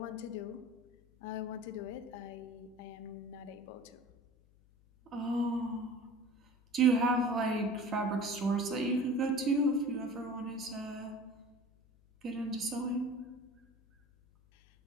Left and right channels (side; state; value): left; noise; hum, 28 dB below the sound